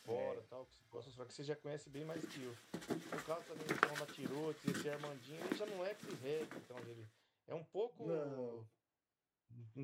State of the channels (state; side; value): identical; both; correlation 1.00